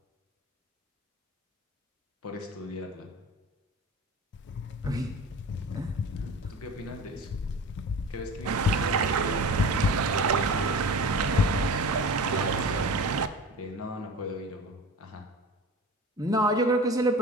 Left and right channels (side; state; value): both; normal; correlation 0.35